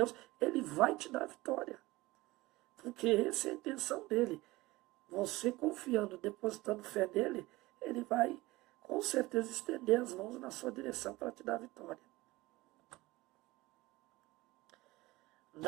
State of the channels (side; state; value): left; quieter; 20.0 dB